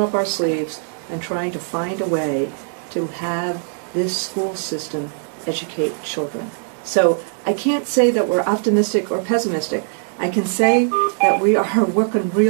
up our sleeves and trying to find a way to have this school system educate children. So I can't say that we're optimistic or pessimistic. I can say that we are working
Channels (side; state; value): left; silent; digital silence